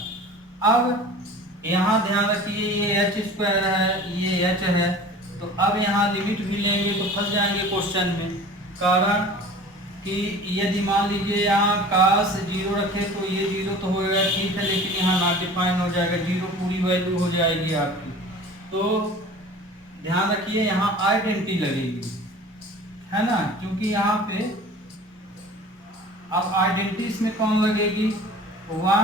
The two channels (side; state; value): both; normal; correlation 0.42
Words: अब यहाँ ध्यान रखिए, ये h स्क्वायर है, ये h है, तो अब यहाँ लिमिट भी लेंगे तो फंस जाएंगे क्वेश्चन में। कारण कि यदि मान लीजिए यहाँ काश 0 रखे तो ये 0 तो होएगा ठीक है, लेकिन यहाँ नॉट डिफाइन हो जाएगा, 0 पूरी वैल्यू हो जाएगी आपकी। तो ध्यान रखिए यहाँ आइडेंटिटी लगेगी, है ना, क्योंकि यहाँ पे अब आइडेंटिटी इसमें कौन लगेगी,